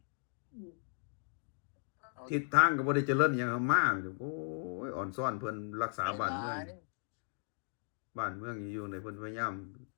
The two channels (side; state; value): right; silent; 53 dB below the other